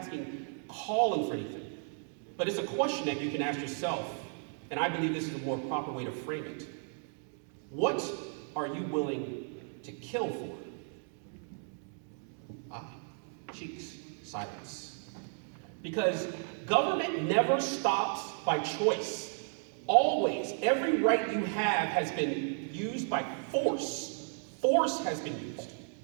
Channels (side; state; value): left; silent; 55 dB below the other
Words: calling for anything, but it's a question that you can ask yourself, and I believe this is a more proper way to frame it. What are you willing to kill for? Cheeks, silence. Because government never stops by choice. Always, every right you have has been used by force. Force has been used.